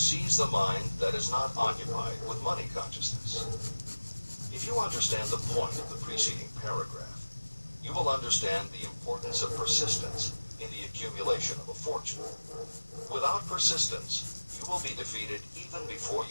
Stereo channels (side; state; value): both; inverted; correlation -1.00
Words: the mind that is not occupied with money consciousness. If you understand the point of the preceding paragraph, you will understand the importance of persistence in the accumulation of a fortune. Without persistence, you will be defeated even before